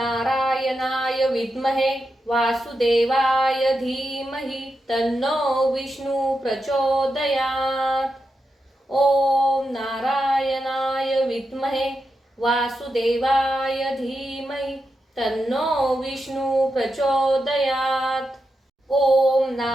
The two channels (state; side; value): normal; both; correlation 0.87